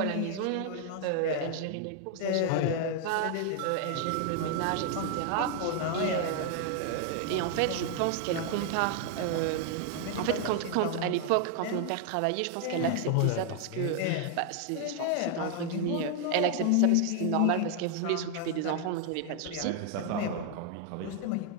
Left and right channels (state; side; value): different; both; correlation 0.00